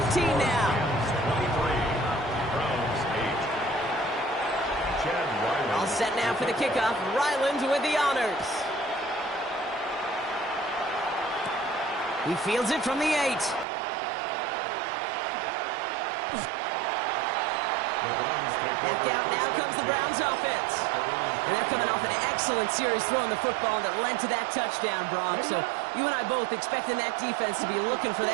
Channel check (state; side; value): drops out; left; at 13.7 s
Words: now. 23. Browns 8. Chad Ryland. All set now for the kickoff. Ryland with the honors. He fields it from the 8. Back out, now comes the Browns offense. And they're coming off an excellent series throwing the football that led to that touchdown, Brock. So you and I both expecting that defense to be looking for